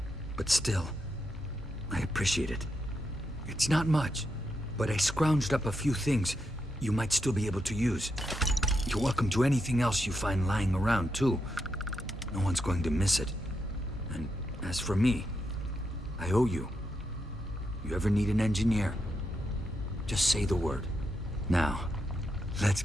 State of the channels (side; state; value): both; normal; correlation 0.83